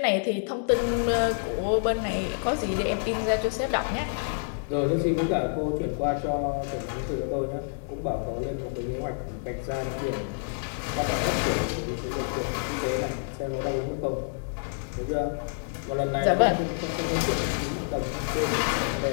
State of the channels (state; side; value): silent; right; digital silence